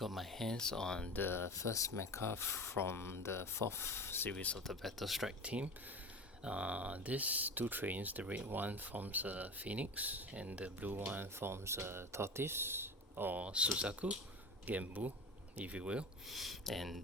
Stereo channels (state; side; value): normal; both; correlation 0.31